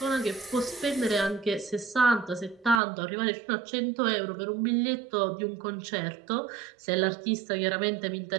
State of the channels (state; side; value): drops out; left; at 2.8 s